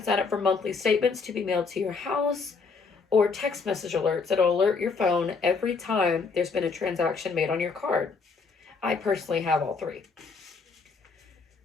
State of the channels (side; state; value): right; quieter; 4.8 dB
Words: sign up for monthly statements to be mailed to your house, or text message alerts that'll alert your phone every time there's been a transaction made on your card. I personally have all three.